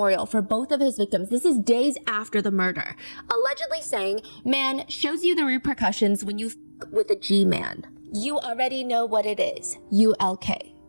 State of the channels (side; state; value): both; inverted; correlation -1.00